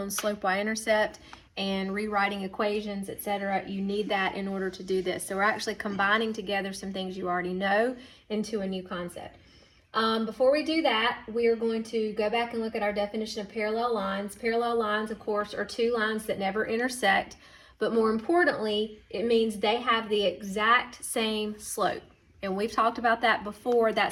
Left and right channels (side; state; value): both; identical; correlation 1.00